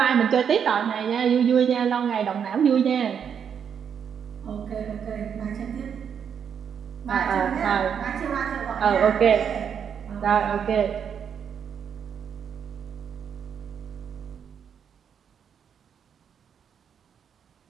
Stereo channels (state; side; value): quieter; left; 7.6 dB